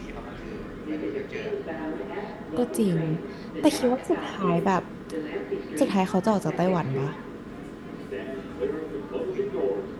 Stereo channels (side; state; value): both; identical; correlation 1.00